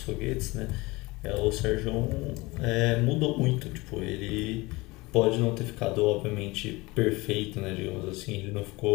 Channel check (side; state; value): right; quieter; 22.7 dB